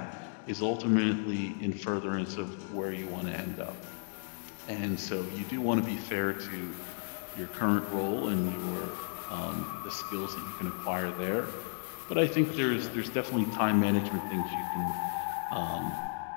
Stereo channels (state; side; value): silent; right; digital silence